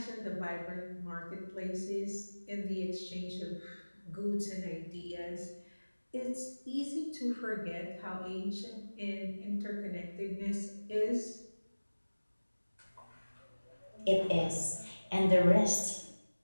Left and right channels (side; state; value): both; inverted; correlation -1.00